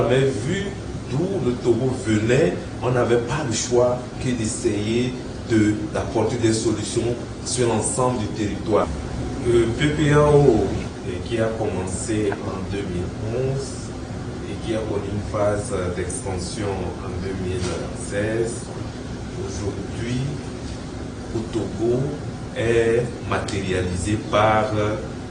mais vu d'où le Togo venait, on n'avait pas le choix que d'essayer d'apporter des solutions sur l'ensemble du territoire. Le PPAO qui a commencé en 2011 et qui a connu une phase d'extension en 2016, aujourd'hui au Togo est matérialisé par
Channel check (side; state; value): both; identical; correlation 1.00